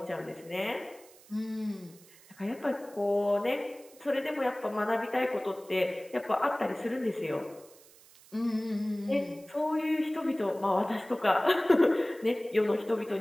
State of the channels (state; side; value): noise; right; hiss, 24 dB below the sound